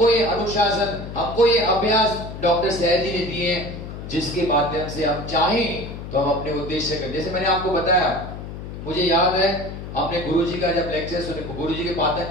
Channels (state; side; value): noise; left; hum, 10 dB below the sound